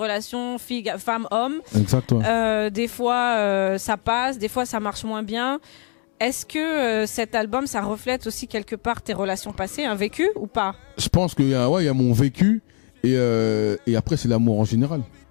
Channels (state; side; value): quieter; right; 39.7 dB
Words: femme-homme. Exact. Ouais. Des fois, ça passe, des fois, ça marche moins bien. Est-ce que cet album, ça reflète aussi quelque part tes relations passées, un vécu ou pas? Je pense qu'il y a mon vécu et après c'est l'amour en général.